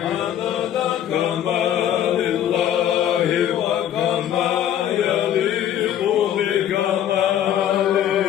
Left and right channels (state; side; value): quieter; right; 10.6 dB